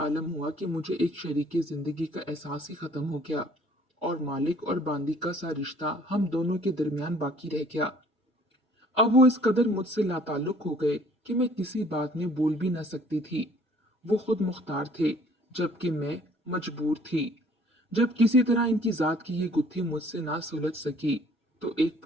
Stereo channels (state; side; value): normal; both; correlation 0.56